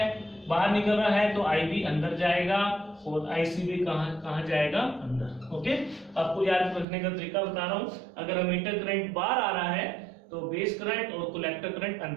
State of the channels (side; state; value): left; drops out; at 6.9 s